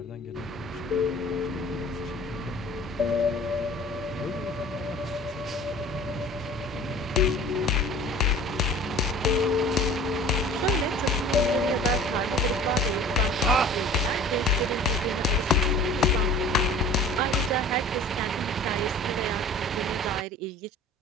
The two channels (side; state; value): both; normal; correlation 0.45